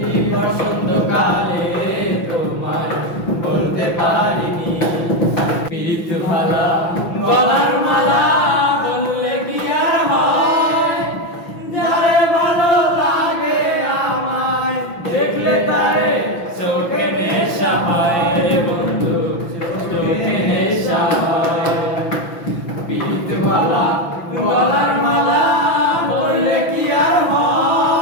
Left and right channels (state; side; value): late; right; 6.0 ms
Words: বসন্তকালে তোমায় বলতে পারিনি প্রীত ভালা গলার মালা বললে কি আর হয় যারে ভালো লাগে আমায় দেখলে তারে চোখে নেশা হয় রে বন্ধু চোখে নেশা হয় প্রীত ভালা গলার মালা বললে কি আর